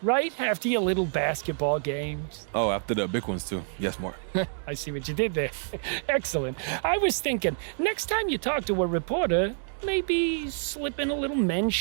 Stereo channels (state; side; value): silent; left; digital silence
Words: right? After your little basketball games. Oh, after the big ones, too. Yes, more. I see what you did there. Excellent. I was thinking, next time you talk to a reporter, maybe slip in a little